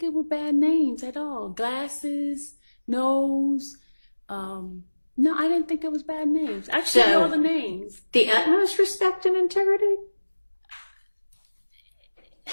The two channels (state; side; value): inverted; both; correlation -1.00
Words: it were bad names at all. Glasses, nose. No, I didn't think it was bad names. I showed So, all the names. The utmost respect and integrity?